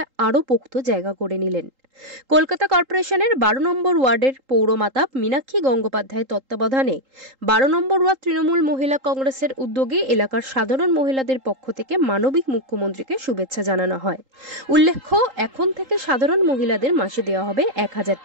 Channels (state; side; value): late; left; 3.8 ms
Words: আরও পোক্ত জায়গা করে নিলেন। কলকাতা কর্পোরেশনের 12 নম্বর ওয়ার্ডের পৌরমাতা মীনাক্ষী গঙ্গোপাধ্যায়ের তত্ত্বাবধানে 12 নম্বর ওয়ার্ড তৃণমূল মহিলা কংগ্রেসের উদ্যোগে এলাকার সাধারণ মহিলাদের পক্ষ থেকে মানবিক মুখ্যমন্ত্রীকে শুভেচ্ছা জানানো হয়। উল্লেখ্য, এখন থেকে সাধারণ মহিলাদের মাসে দেওয়া হবে 1000